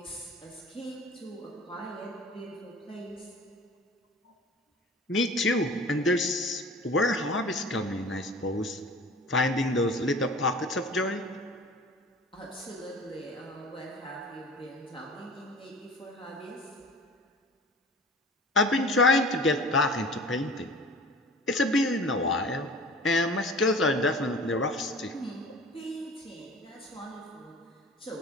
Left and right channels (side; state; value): both; normal; correlation 0.41